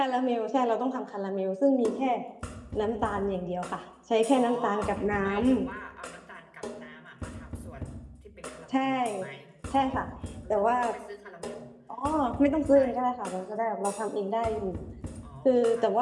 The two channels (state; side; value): identical; both; correlation 1.00